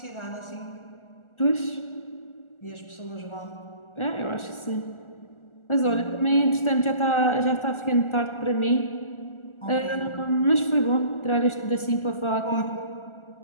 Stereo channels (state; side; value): late; right; 1.4 ms